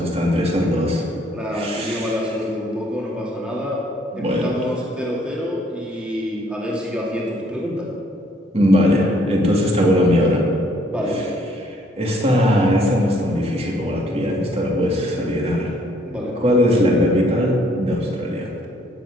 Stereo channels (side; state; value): both; normal; correlation 0.64